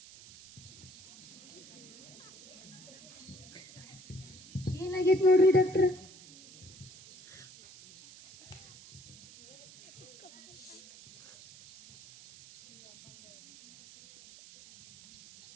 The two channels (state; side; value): noise; right; hiss, 20 dB below the sound